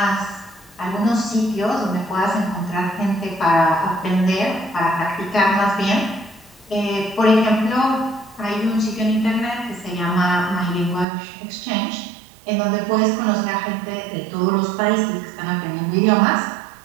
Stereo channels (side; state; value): left; drops out; at 11.1 s